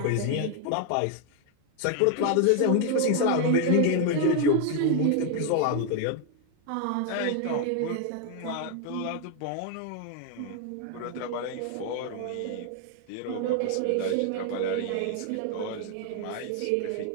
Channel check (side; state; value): both; different; correlation 0.00